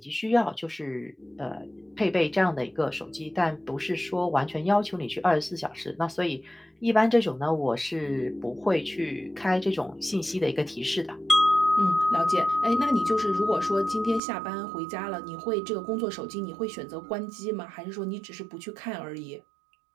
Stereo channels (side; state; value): left; drops out; at 14.2 s